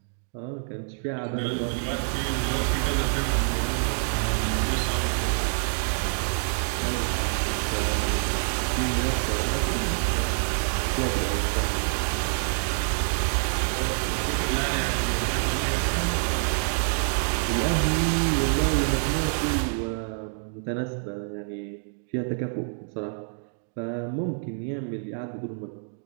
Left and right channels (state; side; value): silent; left; digital silence